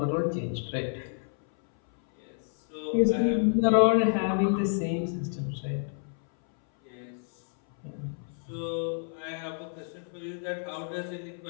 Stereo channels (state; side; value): silent; right; 58 dB below the other